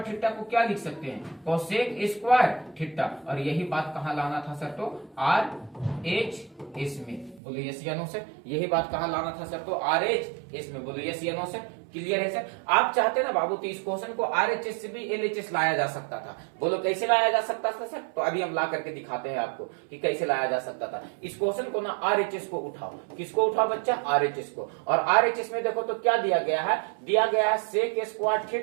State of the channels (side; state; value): left; drops out; at 7.4 s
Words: थीटा को क्या लिख सकते हैं? Cosec square theta. और यही बात कहां लाना था सर? तो RHS में। बोलो यस या नो सर? यही बात कहां लाना था सर? तो RHS में। बोलो यस या नो सर? क्लियर है सर? आप चाहते ना बाबू तो इस क्वेश्चन को RHS से भी LHS लाया जा सकता था। बोलो कैसे लाया जा सकता था सर? तो अभी हम ला करके दिखाते हैं आपको कि कैसे लाया जा सकता था। इस क्वेश्चन को ना RHS को उठाओ। किसको उठाओ बच्चा? RHS को। और RHS में देखो तो क्या दिया गया है? दिया गया है सेक स्क्वायर